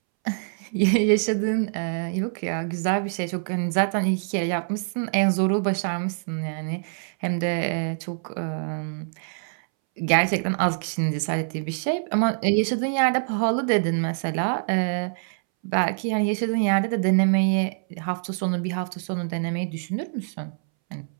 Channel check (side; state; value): left; silent; 62 dB below the other